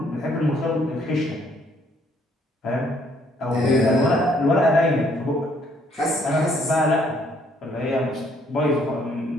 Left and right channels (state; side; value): normal; both; correlation 0.66